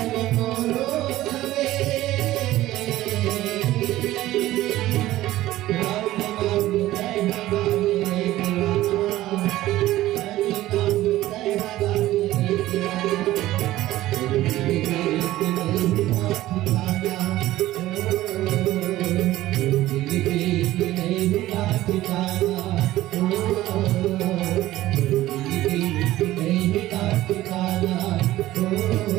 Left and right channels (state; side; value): quieter; left; 15.7 dB